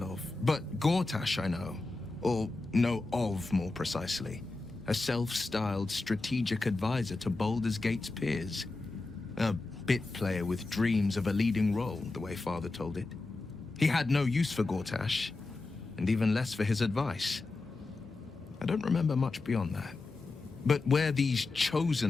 of, but Gortash I know. Or know of, more precisely. A self-styled strategic advisor to Baldur's Gate's peers. A bit player with dreams of a leading role, the way Father told it. He had no use for Gortash, and even less for his advice. I don't remember much beyond that. But where these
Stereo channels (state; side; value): quieter; right; 3.4 dB